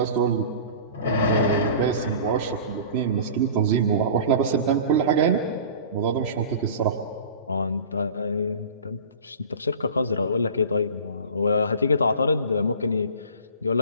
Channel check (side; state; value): both; inverted; correlation -0.39